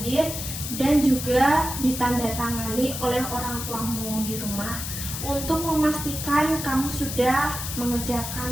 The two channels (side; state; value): left; noise; hiss, 6 dB below the sound